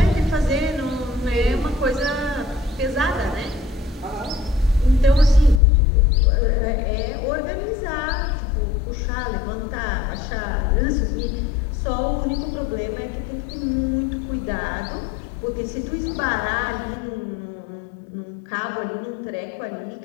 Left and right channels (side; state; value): right; drops out; at 5.6 s